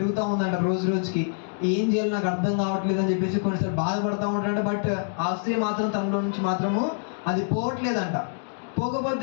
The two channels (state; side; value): silent; right; digital silence